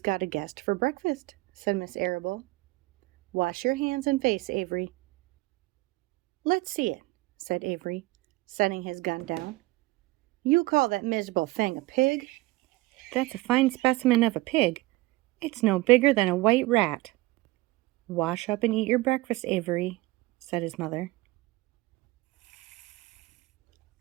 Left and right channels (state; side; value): quieter; left; 20.8 dB